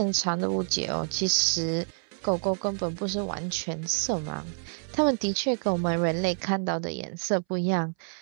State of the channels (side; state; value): left; silent; 59 dB below the other